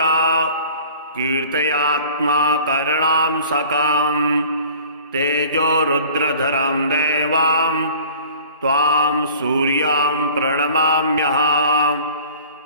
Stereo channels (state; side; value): inverted; both; correlation -0.46